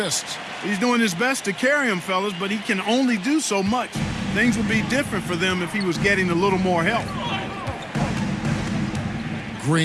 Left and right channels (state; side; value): identical; both; correlation 1.00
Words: He's doing his best to carry him, fellas, but he can only do so much. Things would be different for them if he was getting a little more help.